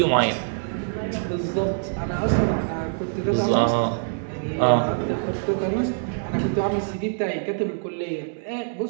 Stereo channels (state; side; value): silent; left; 62 dB below the other